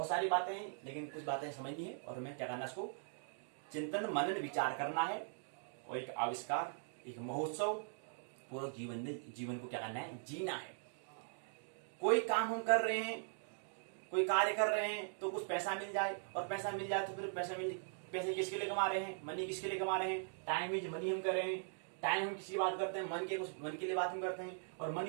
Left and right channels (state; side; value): silent; left; digital silence